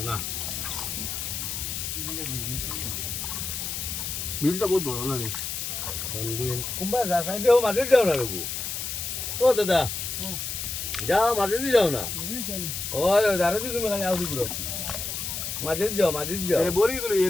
Bilda বহুত বড় না রে বিল কুম্বা রাখা দেও মাঝে যাও না রঘু ও দাদা যাও মাঝে দিয়ে যাও না ওই দাঁড়া দিয়ে তুমি খালি আউদি পুরো মাঝে যাও আরে বড়ি করে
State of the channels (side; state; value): left; noise; hiss, 4 dB below the sound